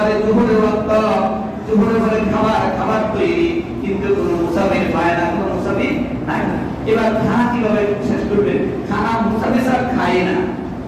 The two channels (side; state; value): both; identical; correlation 1.00